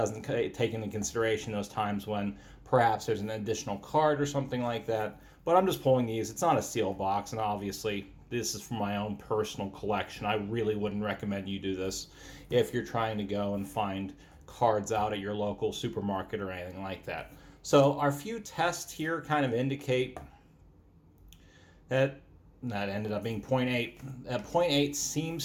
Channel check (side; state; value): both; identical; correlation 1.00